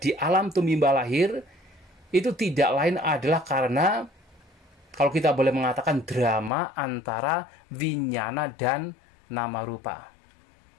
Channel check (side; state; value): right; drops out; at 6.5 s